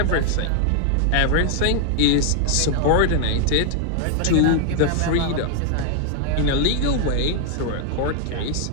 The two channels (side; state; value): both; different; correlation 0.00